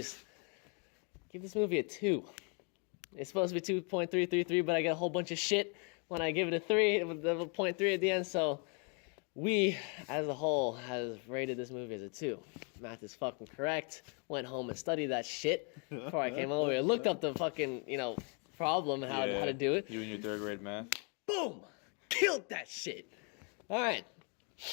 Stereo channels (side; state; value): right; quieter; 36.6 dB